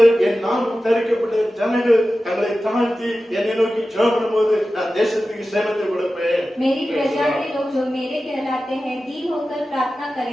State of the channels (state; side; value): normal; both; correlation 0.94